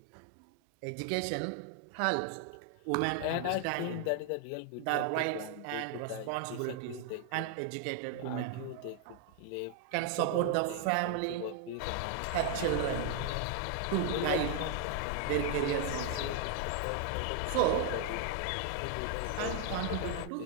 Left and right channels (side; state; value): both; different; correlation 0.00